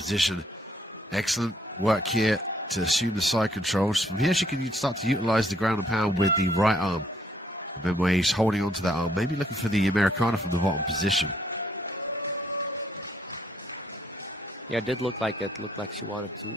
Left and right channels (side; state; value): both; normal; correlation 0.67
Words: Excellent work here to assume the side controls. From here she can start to utilize the ground and pound with the right arm. Benouaich holding on to that arm, maybe looking for the Americana from the bottom position. Yeah, it did look like it. Looked like she wanted